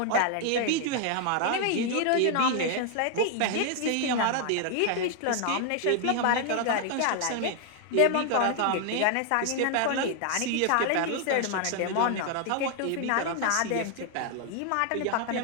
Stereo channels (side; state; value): both; different; correlation 0.00